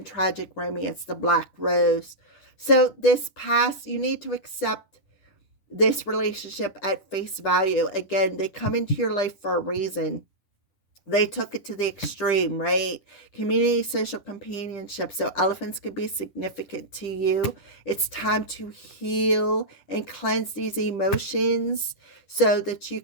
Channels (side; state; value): right; late; 10 ms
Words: tragic romance, the Black Rose. So this past, you need to accept this relationship at face value. Again, they come into your life for a reason. they took it to the extreme, right? Community, social companionship. So elephants can be significant to you. It's time to heal and cleanse these emotions so that you